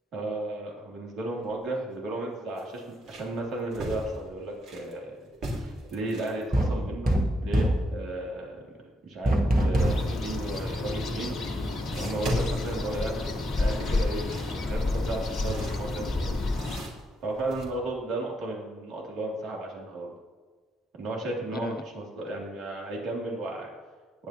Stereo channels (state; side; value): normal; both; correlation 0.79